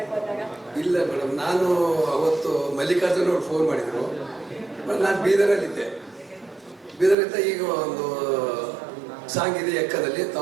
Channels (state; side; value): drops out; left; at 7.2 s